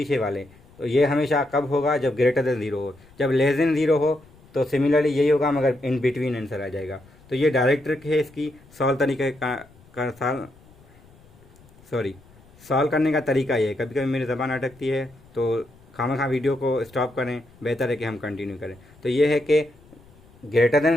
वाले। तो ये हमेशा कब होगा, जब ग्रेटर देन 0 हो। जब लेस देन 0 हो तो सिमिलरली यही होगा, मगर इन बिटवीन आंसर आ जाएगा। तो ये डायरेक्ट ट्रिक है इसकी, सॉल्व करने का तरीका ये है। कभी कभी मेरी ज़बान अटकती है तो खामखा वीडियो को स्टॉप करें, बेहतर है कि हम कंटिन्यू करें। तो ये है कि ग्रेटर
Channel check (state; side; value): noise; left; rumble, 27 dB below the sound